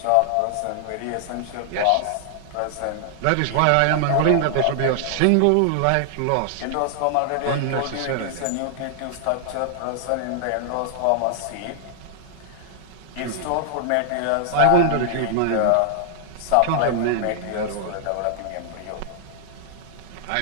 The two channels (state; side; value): different; both; correlation -0.01